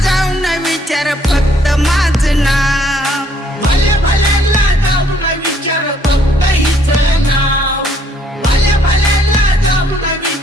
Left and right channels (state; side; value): normal; both; correlation 0.65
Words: जाऊन विचार फक्त माझं नाव भल्या भल्यांना जाऊन विचार फक्त हिचं नाव भल्या भल्यांना जाऊन